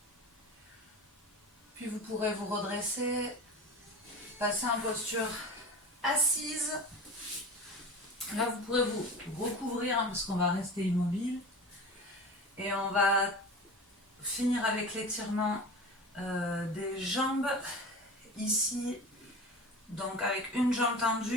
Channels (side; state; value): both; normal; correlation 0.33